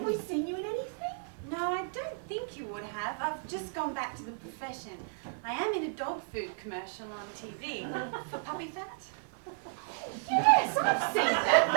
we seen you in anything? No, I don't think you would have. I've just gone back to the profession. I am in a dog food commercial on TV for puppy fat. Yes, I've seen that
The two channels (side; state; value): left; silent; 56 dB below the other